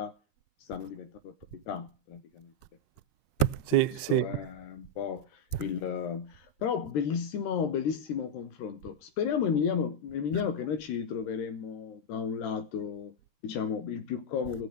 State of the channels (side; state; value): right; late; 13 ms